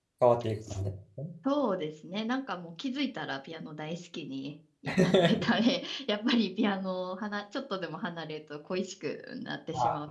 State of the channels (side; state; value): both; identical; correlation 1.00